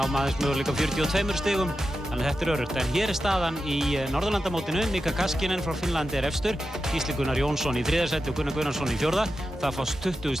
aðeins möguleika 42 stigum, þannig að þetta öruggt. En hér staðan í Norðurlandamótinu. Mika Kaskinen frá Finnlandi efstur, Gísli Gunnar Jónsson í 3. sæti og Gunnar Gunnarsson í 4. Það fást 20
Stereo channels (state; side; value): normal; both; correlation 0.90